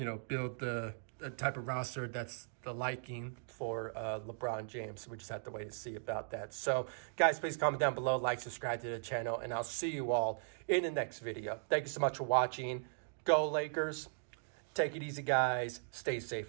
the type of roster that's the liking for LeBron James. We just have to wait to see about that. So, guys, please comment down below, like, subscribe to the channel, and I'll see you all in the next video. Thank you so much for watching. Go Lakers. Take it easy, guys. Stay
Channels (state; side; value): silent; left; digital silence